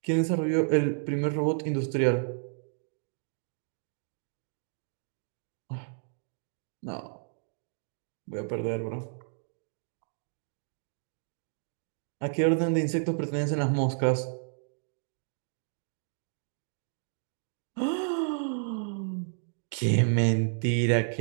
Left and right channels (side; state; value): left; silent; digital silence